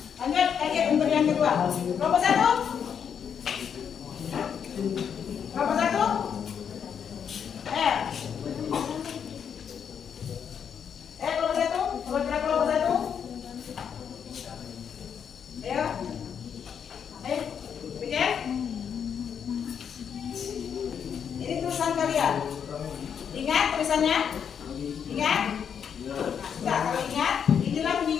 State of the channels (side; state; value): right; quieter; 7.7 dB